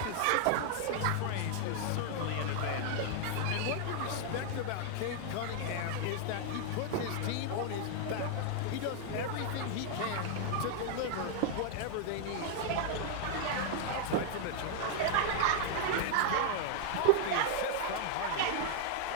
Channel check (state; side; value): different; both; correlation 0.00